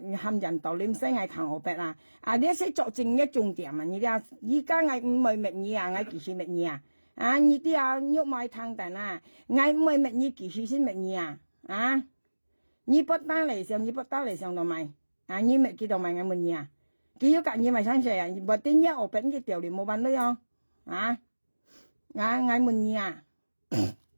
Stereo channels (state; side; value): inverted; both; correlation -1.00